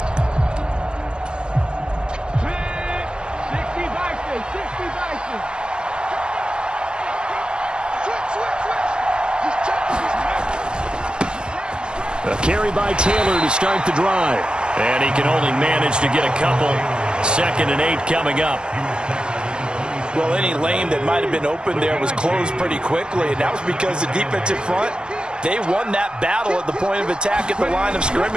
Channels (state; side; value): late; left; 0.052 ms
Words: A carry by Taylor to start the drive. And he can only manage to get a couple. 2nd and 8 coming up. Well, any lane that might have been open there was closed pretty quickly, and that was because the defensive front, they won that battle at the point of attack at the line of